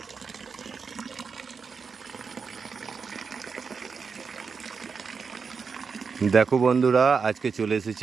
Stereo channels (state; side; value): quieter; left; 5.4 dB